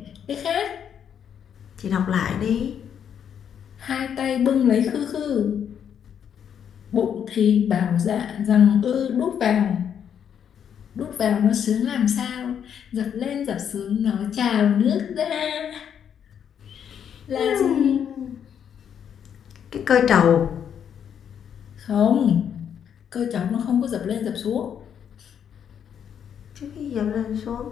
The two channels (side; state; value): right; quieter; 8.5 dB